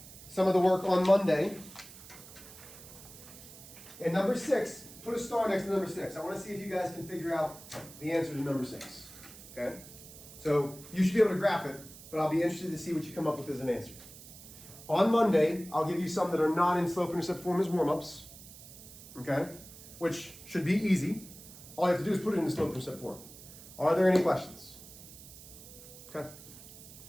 some of the work on Monday. And number 6, put a star next to number 6. I want to see if you guys can figure out the answer to number 6. Okay? So you should be able to graph it, but I'll be interested to see what you come up with as an answer. On Monday, I'll give you some that are not in slope-intercept form as warm-ups. Okay? Which should be easy. All you have to do is put it in the slope-intercept form. Are there any questions? Okay.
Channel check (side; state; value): right; noise; hiss, 17 dB below the sound